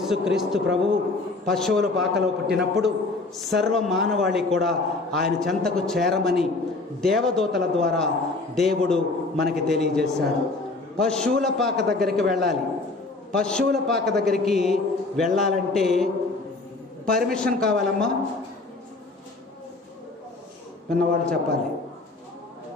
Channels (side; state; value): right; quieter; 3.3 dB